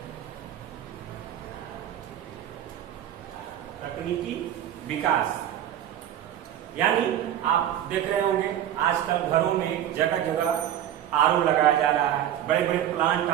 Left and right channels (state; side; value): quieter; left; 11.1 dB